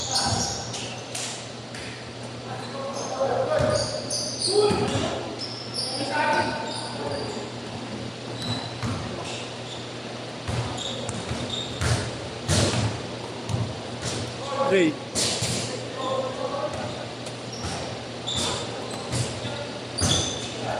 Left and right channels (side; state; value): both; identical; correlation 1.00